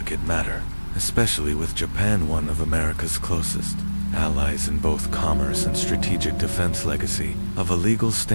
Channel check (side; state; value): both; inverted; correlation -1.00